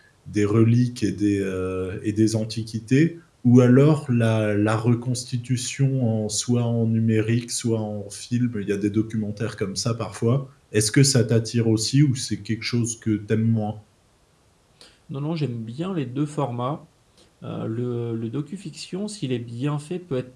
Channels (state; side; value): identical; both; correlation 1.00